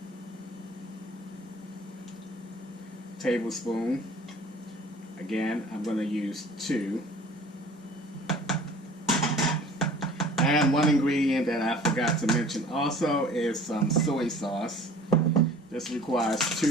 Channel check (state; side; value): normal; both; correlation 0.48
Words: tablespoon. Again, I'm going to use 2. And one ingredient that I forgot to mention also is some soy sauce. This requires